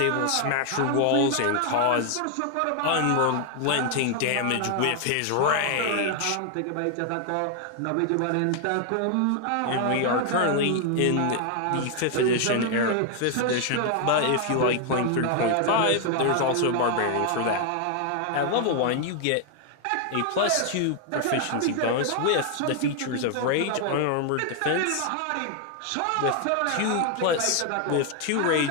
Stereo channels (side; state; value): both; different; correlation 0.00